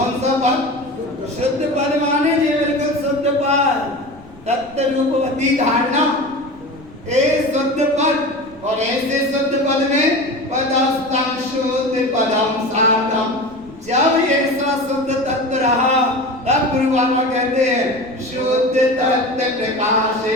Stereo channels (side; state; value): right; noise; rumble, 24 dB below the sound